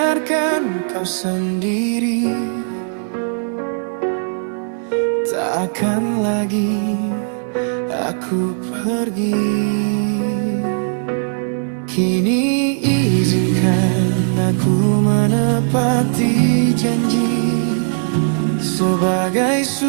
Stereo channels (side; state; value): left; silent; digital silence